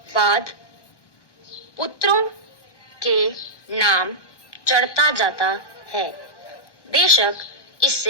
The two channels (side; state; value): right; late; 1.1 ms